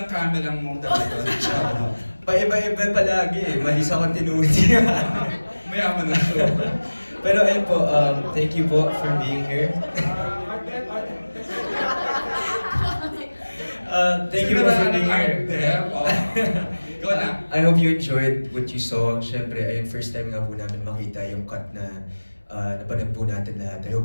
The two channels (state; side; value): inverted; both; correlation -1.00